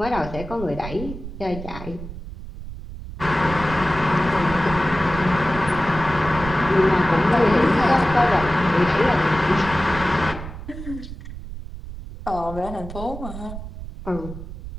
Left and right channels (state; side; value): noise; right; rumble, 11 dB below the sound